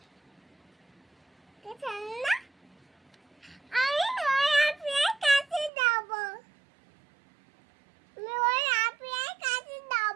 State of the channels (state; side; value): drops out; left; at 5.7 s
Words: কে রান্না আমি ওই আপনার কাছে যাবো আমি ওই আপনার কাছে